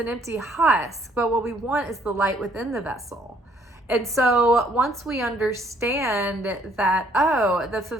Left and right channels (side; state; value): both; normal; correlation 0.64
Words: empty husk, but what we want is the light within the vessel. And so once we understand that, the